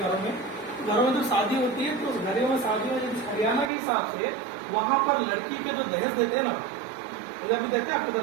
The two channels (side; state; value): left; drops out; at 3.7 s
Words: में जो शादी होती है, तो उस घरों में शादी में हरियाणा के हिसाब से वहाँ पर लड़की के जो दहेज देते हैं ना, इधर भी देते हैं आपकी